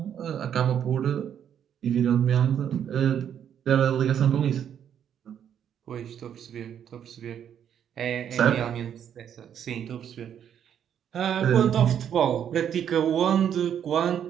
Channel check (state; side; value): quieter; left; 9.1 dB